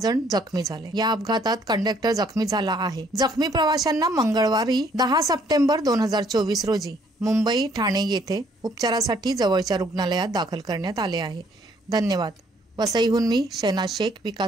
जखमी झाले। या अपघातात कंडक्टर जखमी झाला आहे। जखमी प्रवाशांना मंगळवारी 10 सप्टेंबर 2024 रोजी मुंबई ठाणे येथे उपचारासाठी जवळच्या रुग्णालयात दाखल करण्यात आले आहे। धन्यवाद। वसईहून मी शहनाज शेख,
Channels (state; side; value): normal; both; correlation 0.64